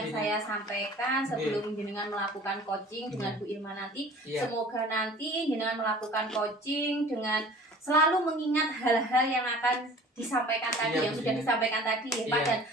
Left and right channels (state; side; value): normal; both; correlation 0.46